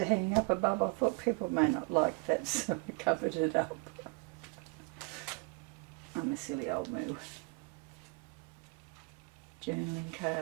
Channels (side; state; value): left; quieter; 31.0 dB